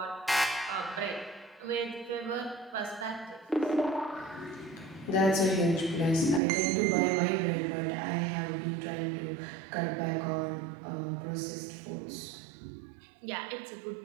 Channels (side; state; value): left; drops out; at 6.4 s